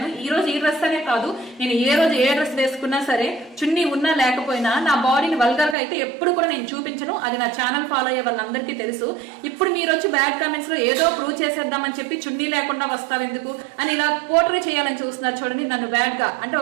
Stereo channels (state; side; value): drops out; left; at 5.8 s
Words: ఈ రోజు ఈ డ్రెస్ అనే కాదు, నేను ఏ రోజు ఏ డ్రెస్ వేసుకున్నా సరే, చున్నీ ఉన్నా లేకపోయినా నా బాడీని వల్గర్ గా అయితే ఎప్పుడు కూడా నేను చూపించను. అది నా ఛానల్ ఫాలో అయ్యే వాళ్ళందరికీ తెలుసు. ఇప్పుడు మీరు వచ్చి బ్యాడ్ కామెంట్స్ లో ఏదో ప్రూవ్ చేసేద్దామని చెప్పి చున్నీ లేకుండా వస్తావు ఎందుకు అని ఇలా పోర్ట్రే చేయాలని చూస్తున్నారు. చూడండి, నన్ను బ్యాడ్ గా అంటే